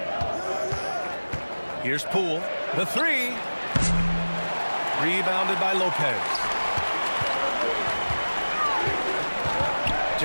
Here's Poole. The 3. Rebounded by Lopez.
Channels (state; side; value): inverted; both; correlation -1.00